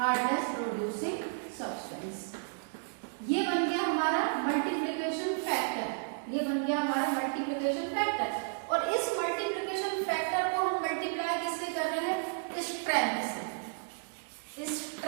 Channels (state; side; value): silent; left; digital silence